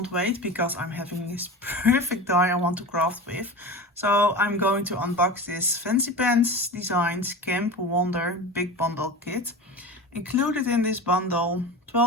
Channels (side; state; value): both; normal; correlation 0.30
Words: wait because I'm having this perfect die I want to craft with. So I'm going to unbox this Fancy Pens Designs Camp Wonder Big Bundle Kit. Included in this bundle,